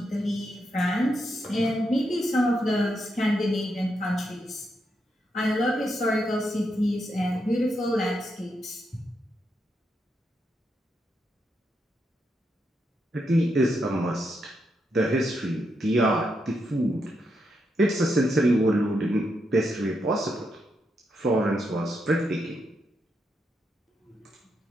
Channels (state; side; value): normal; both; correlation 0.82